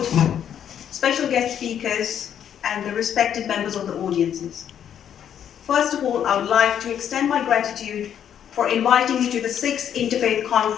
special guest speakers, and the respected members of the audiences. First of all, I would like to extend my gratitude for inviting me to the 6th Interfaith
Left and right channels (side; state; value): right; quieter; 9.3 dB